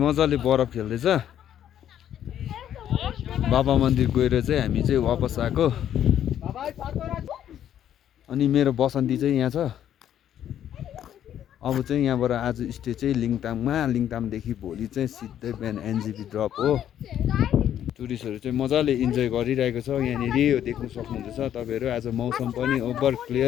बरफ खेल्दैछ। बाबा मन्दिर गएर चाहिँ हामी चाहिँ वापस आएको। अनि मेरो बसन्ती चाहिँ यहाँ छ। अब चाहिँ यहाँबाट आज स्टे चाहिँ लिङतामदेखि भोलि चाहिँ सिधै बिहान एनजेपी ड्रप हो। टुरिस्टहरू चाहिँ मजाले इन्जोय गरिरहेको छ यहाँनिर, यो देख्न सक्नुहुँदैछ तपाईँहरू। आज मौसम पनि ओभर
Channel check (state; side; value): quieter; right; 10.5 dB